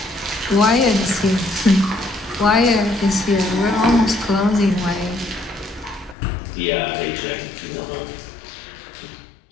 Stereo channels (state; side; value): drops out; right; at 6.2 s